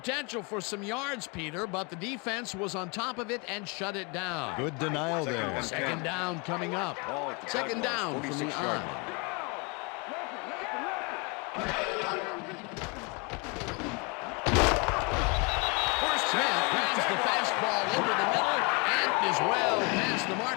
for some yards, Peter, but the defense was on top of it and shut it down. Good denial there. Second down coming up. Second down from the eye. Smith grabs the fastball over the middle and is well past the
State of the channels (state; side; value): quieter; right; 31.2 dB